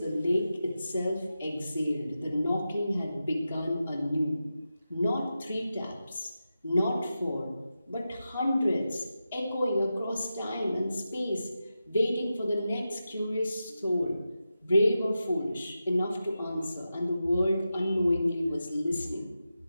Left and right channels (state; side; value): inverted; both; correlation -0.91